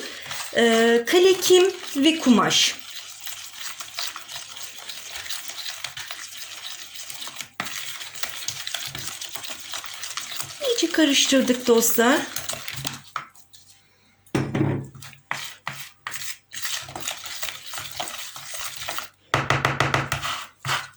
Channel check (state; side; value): identical; both; correlation 1.00